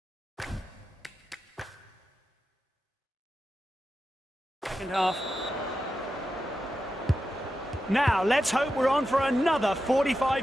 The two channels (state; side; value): normal; both; correlation 0.90